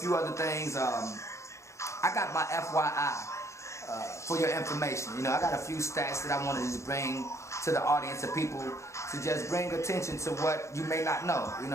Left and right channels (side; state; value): right; late; 0.14 ms